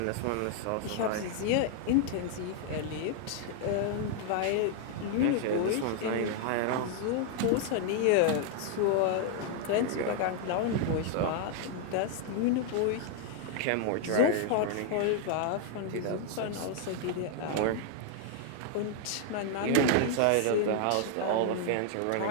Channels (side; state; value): both; different; correlation 0.00